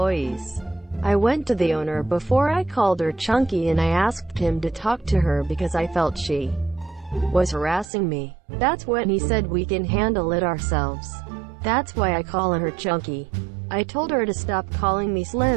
I went to the owner before I called her chunky, and I asked him to talk to her because I felt she was harassing me. That's when he said we can handle it ourselves. That's why I call her chunky. I told her to stop calling me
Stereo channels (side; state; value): left; drops out; at 7.9 s